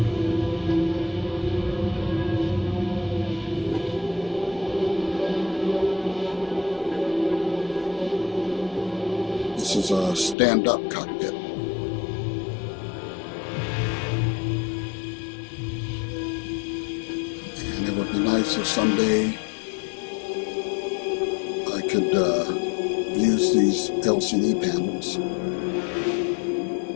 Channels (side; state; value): right; drops out; at 10.4 s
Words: This is a stand-up cockpit. And it would be nice if someday I could use these LCD panels.